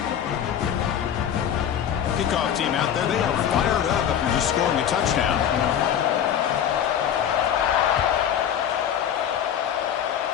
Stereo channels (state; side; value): quieter; right; 9.4 dB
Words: Kickoff team out there, they are fired up after just scoring a touchdown.